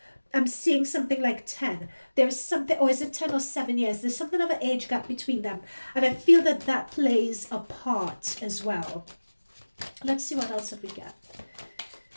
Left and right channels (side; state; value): both; inverted; correlation -1.00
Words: I'm seeing something like 10. There is something, or is it 10 or 7 years? There's something of an age gap between them. And I feel that that plays a part as well. Let's see what else have we got.